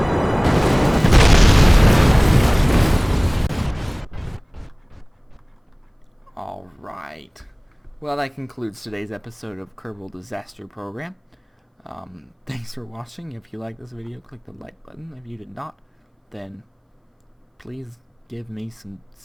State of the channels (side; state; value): both; identical; correlation 1.00